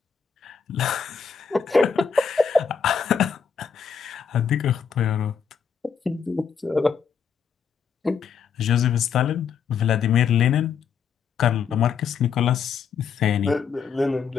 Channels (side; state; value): right; quieter; 6.7 dB